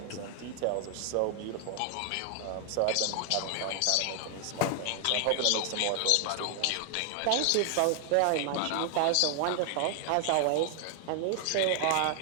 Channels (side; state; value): both; different; correlation 0.00